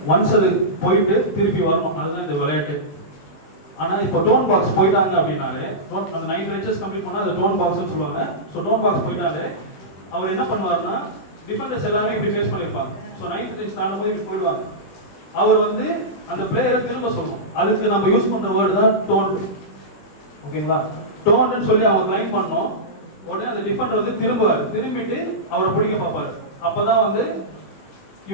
ஒன்ஸ் அது போயிட்டு திருப்பி வரணும், அதுதான் இந்த விளையாட்டு. ஆனா இப்போ டோன் பாக்ஸ் போயிட்டாங்க அப்படின்னாலே, அந்த 9 பெஞ்சஸ் கம்ப்ளீட் பண்ணா அது டோன் பாக்ஸ்னு சொல்லுவாங்க. ஸோ டோன் பாக்ஸ் போயிட்டாலே அவர் என்ன பண்ணுவாருன்னா, டிஃபெண்டர்ஸ் எல்லாமே இப்படி ஃபேஸ் பண்ணியிருப்பாங்க. ஸோ 9th பெஞ்ச் தாண்டும் போது இப்படி போயிடுவாங்க. அவர் வந்து அந்த பிளேயரை திரும்ப சொல்லணும். அதுக்கு நம்ம யூஸ் பண்ற வேர்டு தான் டோன். ஓகேங்களா? டோன்னு சொல்லி அவங்க லைன் பண்ணோம். உடனே அந்த டிஃபெண்டர் வந்து திரும்புவார், திரும்பிட்டு அவரை பிடிக்க பார்ப்பாரு. அப்பதான் வந்து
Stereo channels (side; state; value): right; late; 21 ms